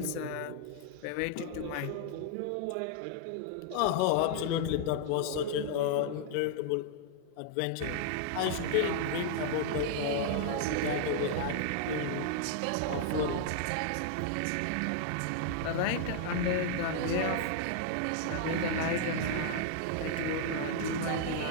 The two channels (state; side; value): different; both; correlation -0.01